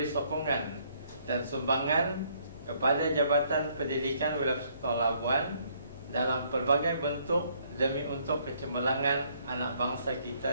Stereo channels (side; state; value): both; inverted; correlation -0.67